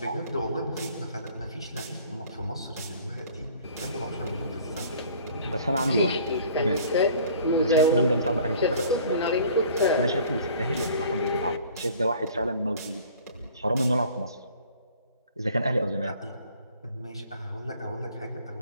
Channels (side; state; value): both; inverted; correlation -0.50